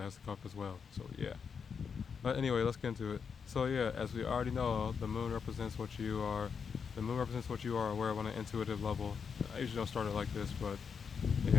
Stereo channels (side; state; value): right; quieter; 6.3 dB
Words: has to come up as well. So yeah. But anyway, let's get into it. So yeah, as we already know, the moon represents what you are. The moon represents what you are aware of on an intuitive level. I usually don't start it like this, but